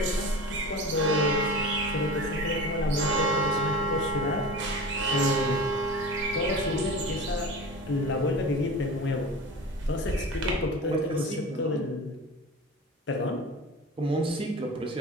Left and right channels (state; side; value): normal; both; correlation 0.33